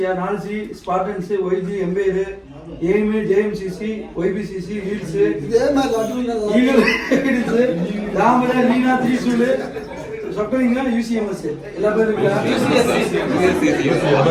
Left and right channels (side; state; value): both; identical; correlation 1.00